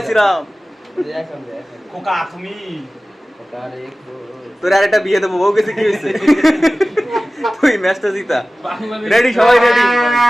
শ্রীরাম। খোকা তুমি তোর আর একটা বিয়ে দেবো, বউ গেছে কি হয়েছে? তুই ম্যাচটা জিতা। রেডি সবাই রেডি?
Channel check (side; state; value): both; normal; correlation 0.97